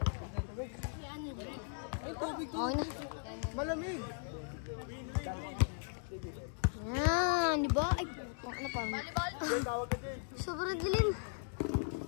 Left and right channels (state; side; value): silent; right; digital silence